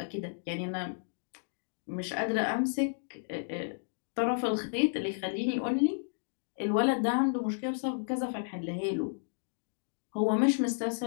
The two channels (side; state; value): right; silent; digital silence